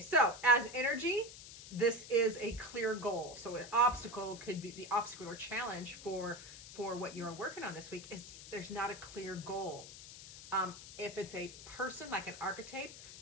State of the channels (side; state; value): left; noise; hiss, 14 dB below the sound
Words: as energy, this is a clear goal. So an obstacle could be the obstacle or challenge for what you're working on this week is there's not a clear goal. If it's a person, like an archetype,